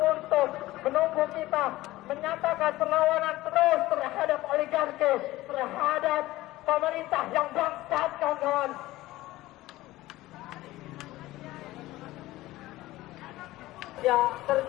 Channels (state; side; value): quieter; right; 17.4 dB